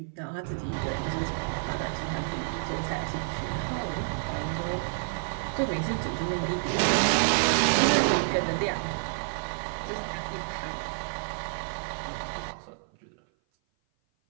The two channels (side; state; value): left; silent; 55 dB below the other